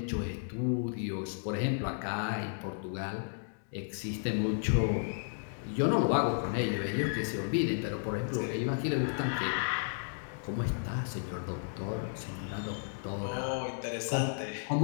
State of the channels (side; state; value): right; silent; digital silence